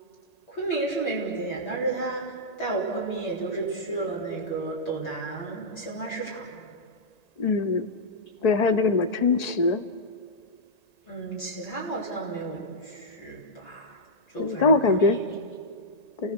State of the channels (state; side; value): late; right; 1.9 ms